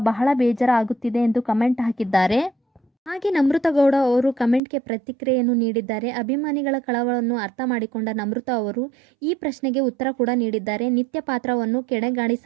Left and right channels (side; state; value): left; drops out; at 4.6 s